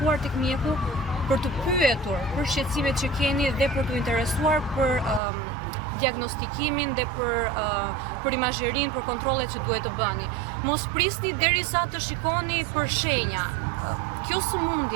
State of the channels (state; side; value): drops out; left; at 5.2 s